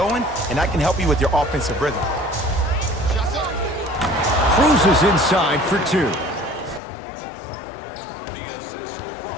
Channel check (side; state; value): right; drops out; at 6.8 s